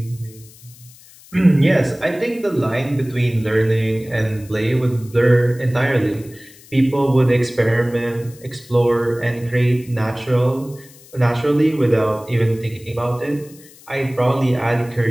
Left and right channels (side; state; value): left; noise; hiss, 23 dB below the sound